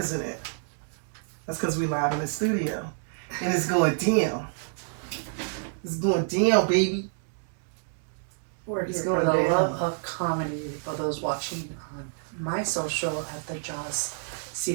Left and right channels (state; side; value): silent; left; digital silence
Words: it? That's because we live in the studio. And it's going down. It's going down, baby. It's going the love of comedy for those watching on my social at the Joz